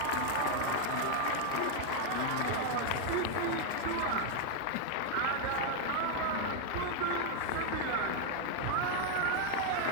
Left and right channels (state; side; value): different; both; correlation 0.00